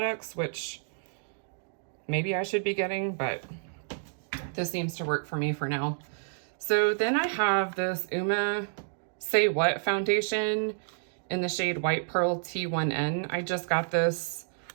which maybe I should be getting, but this seems to work for me for now. So then I have this UOMA Say What foundation in the shade White Pearl T1N. I just got this,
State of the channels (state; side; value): silent; left; digital silence